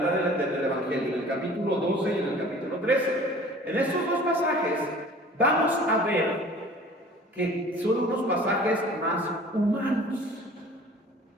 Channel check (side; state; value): both; normal; correlation 0.47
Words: del Evangelio, en el capítulo 12 y en el capítulo 13, en estos 2 pasajes vamos a ver que son unos pasajes más humanos.